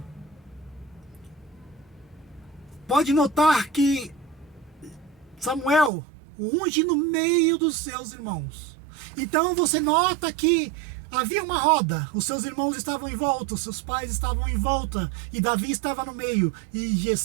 Pode notar que Samuel o unge no meio dos seus irmãos. Então você nota que havia uma roda, os seus irmãos estavam em volta, os seus pais estavam em volta, e Davi estava no meio, e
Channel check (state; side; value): drops out; left; at 5.9 s